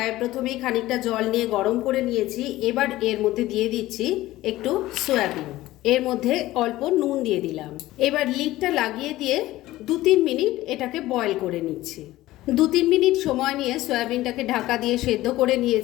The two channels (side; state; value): right; quieter; 16.6 dB